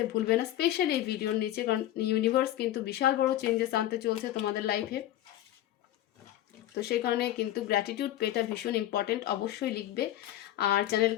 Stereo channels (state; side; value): quieter; right; 13.5 dB